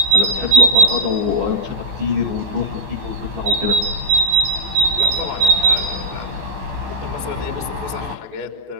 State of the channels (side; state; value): left; late; 15 ms